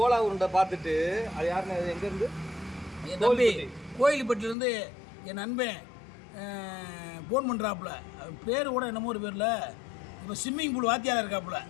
உருண்டை பார்த்துட்டு அது யாருன்னு, எங்கேருந்து? என் தம்பி கோயில்பட்டிலேருந்து என் நண்பன் ஃபோன் பண்ணுறாப்புல. பேர் கூட என்னமோ ஒரு பேரில் இப்போ ஸ்விம்மிங் பூல் வாத்தியாராக இருக்காப்புல.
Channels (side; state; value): right; drops out; at 4.5 s